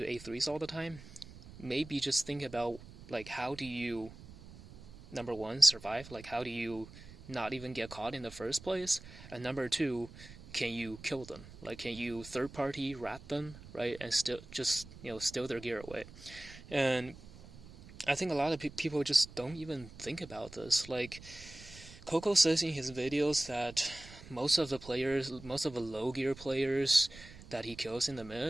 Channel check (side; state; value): right; noise; rumble, 17 dB below the sound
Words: A3s all the time, maybe just think about like how do you, number one, survive? Like how do you not even get caught in the first place? And number two, can you kill them? Like, can you third-party rat them, right? And still just, steal their gear away. And I think a lot of people just don't even think about this. Like, Coco says in his videos that most of the low gear players that he kills in the